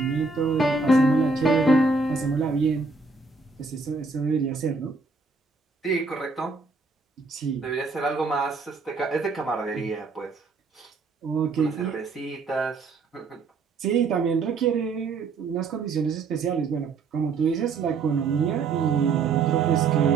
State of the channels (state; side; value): quieter; left; 4.2 dB